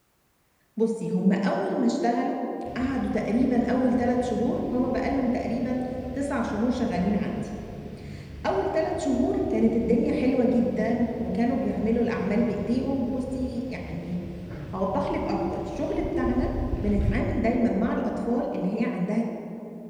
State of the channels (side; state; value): both; identical; correlation 1.00